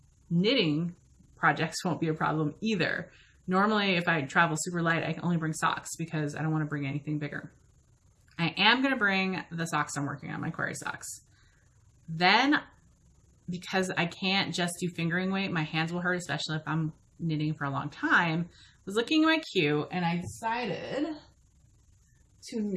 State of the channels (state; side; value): identical; both; correlation 1.00